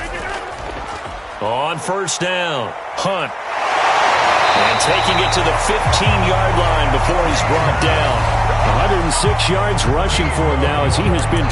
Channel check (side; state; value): both; identical; correlation 1.00